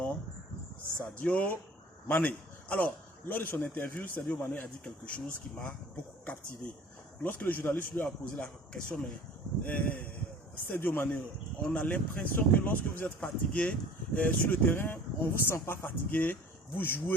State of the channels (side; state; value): both; normal; correlation 0.46